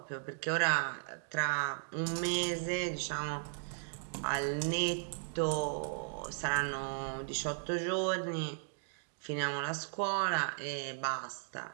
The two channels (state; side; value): silent; left; digital silence